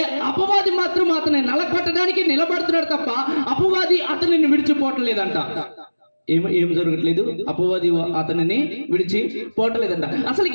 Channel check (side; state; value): both; inverted; correlation -1.00